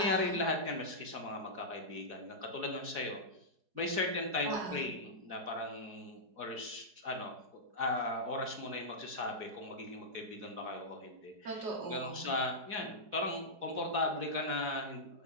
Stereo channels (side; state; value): left; late; 4.8 ms